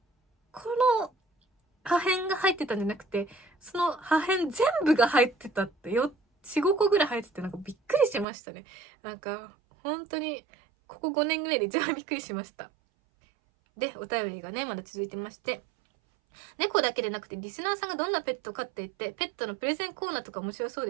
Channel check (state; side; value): drops out; left; at 8.2 s